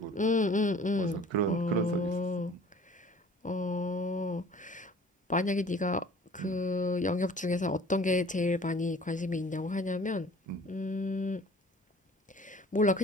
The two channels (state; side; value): normal; both; correlation 0.49